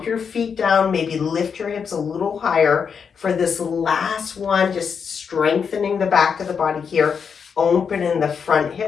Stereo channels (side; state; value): right; quieter; 6.4 dB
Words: your feet down, maybe lift your hips a little higher for this last one, just strengthening the back of the body here. Open in the front